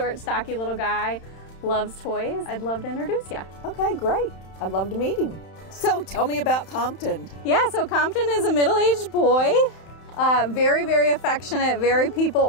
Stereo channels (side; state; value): right; late; 31 ms